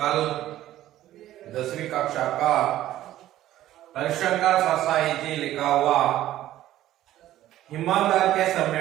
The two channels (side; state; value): left; quieter; 13.7 dB